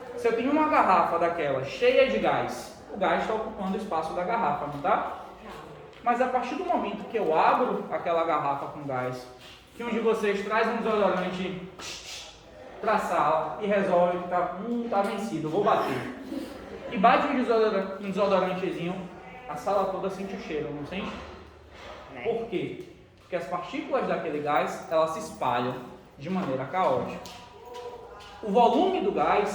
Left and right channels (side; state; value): both; identical; correlation 1.00